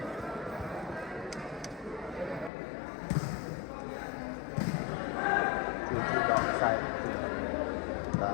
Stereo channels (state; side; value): drops out; right; at 2.5 s